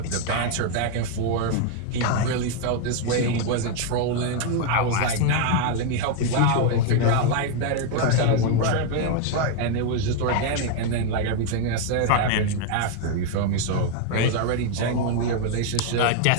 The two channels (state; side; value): different; both; correlation 0.00